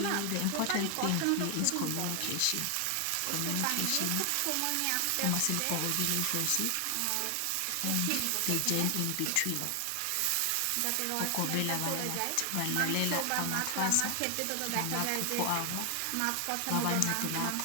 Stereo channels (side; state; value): both; different; correlation 0.00